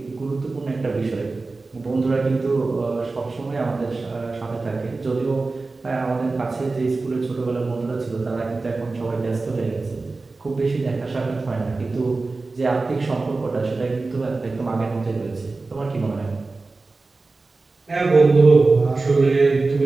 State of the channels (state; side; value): quieter; left; 3.6 dB